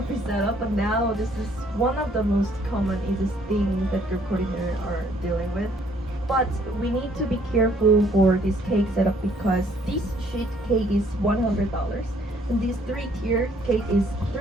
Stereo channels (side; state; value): both; normal; correlation 0.63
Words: setup. But now this is one of the most common easiest things that group coordinators are dealing with. But we need to be careful for this cake setup because this sheet cake is $100 and this 3-tier cake is